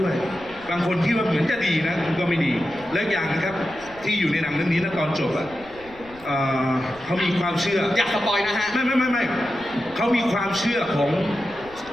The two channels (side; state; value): left; noise; rumble, 22 dB below the sound